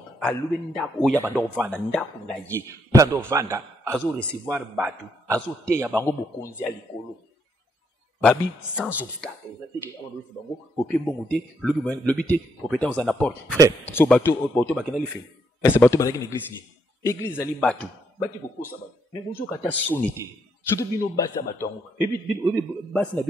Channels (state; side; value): normal; both; correlation 0.75